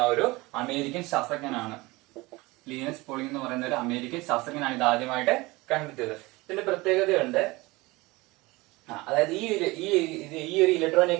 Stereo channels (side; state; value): left; quieter; 22.2 dB